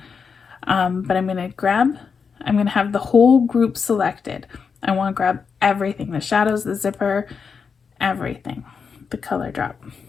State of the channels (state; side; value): quieter; right; 5.8 dB